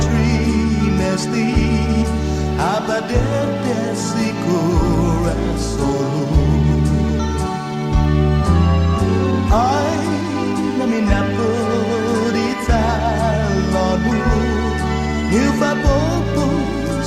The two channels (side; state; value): both; identical; correlation 1.00